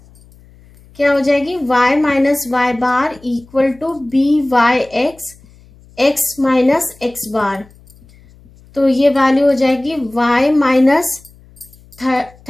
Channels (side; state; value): left; noise; hum, 26 dB below the sound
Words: क्या हो जाएगी? y minus y bar equal to byx x minus x bar. तो ये value हो जाएगी y minus